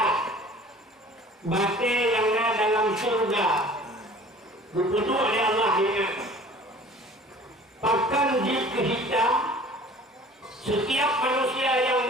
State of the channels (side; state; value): both; normal; correlation 0.47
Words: batu yang ada dalam surga, dipujuk oleh Allah ingat. Pakan jika hitam, setiap manusia yang